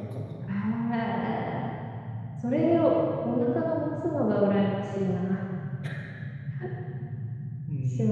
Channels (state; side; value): identical; both; correlation 1.00